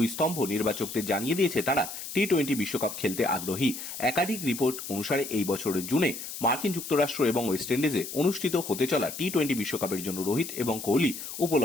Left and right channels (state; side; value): noise; left; hiss, 9 dB below the sound